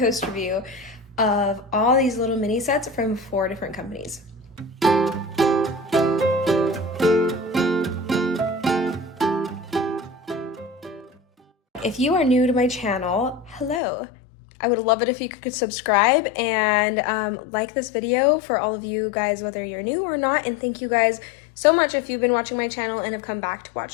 review of all these little mini sets from 4 different companies. If you are new to my channel, hello. I would love it if you could subscribe and like this video for all of you guys, whether you're new or not. And thank you guys so much if you've been watching my channel and have come back to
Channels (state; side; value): drops out; right; at 13.8 s